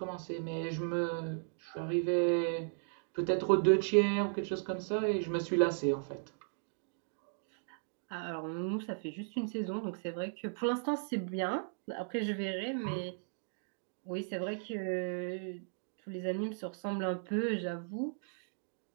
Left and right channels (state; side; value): silent; left; digital silence